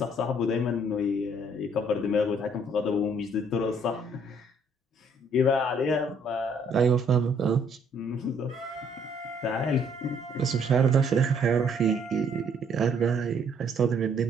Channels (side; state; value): both; normal; correlation 0.64